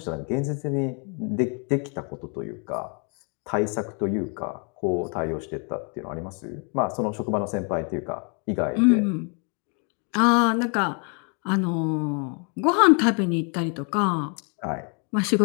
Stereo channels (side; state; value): right; quieter; 37.3 dB